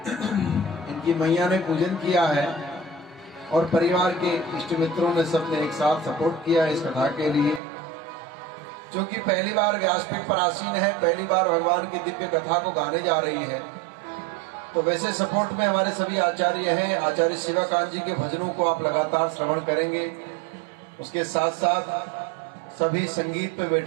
इनकी मैया ने पूजन किया है और परिवार के इष्ट मित्रों ने सबने एक साथ सपोर्ट किया इस कथा के लिए। क्योंकि पहली बार व्यासपीठ पर आसीन है, पहली बार भगवान की दिव्य कथा को गाने जा रही है, तो वैसे सपोर्ट में हमारे सभी आचार्य हैं। आचार्य शिवाकांत जी के भजनों को आप लगातार श्रवण करेंगे। उसके साथ साथ सभी संगीत पे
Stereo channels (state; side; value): drops out; left; at 7.6 s